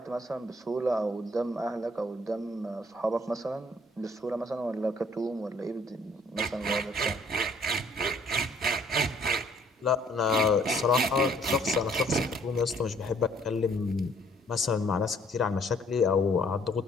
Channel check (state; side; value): normal; both; correlation 0.62